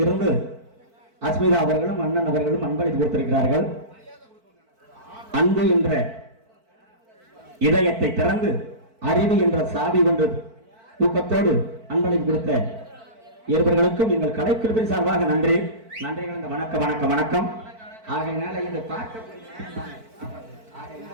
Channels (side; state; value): left; late; 4.5 ms